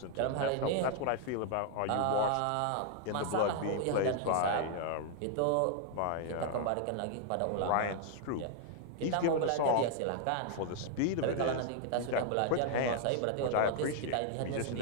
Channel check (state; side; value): different; both; correlation 0.00